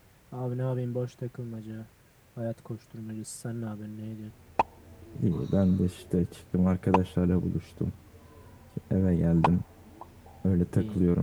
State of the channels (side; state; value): both; identical; correlation 1.00